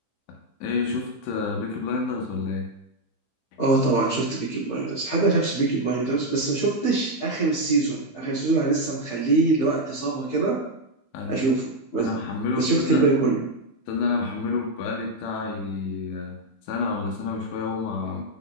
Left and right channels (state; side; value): late; right; 15 ms